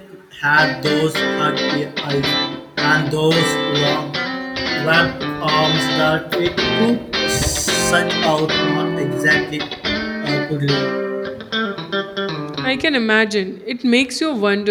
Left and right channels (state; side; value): identical; both; correlation 1.00